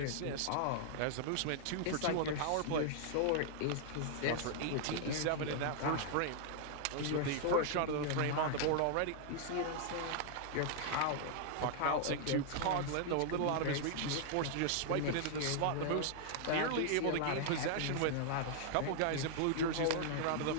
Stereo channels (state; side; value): different; both; correlation -0.01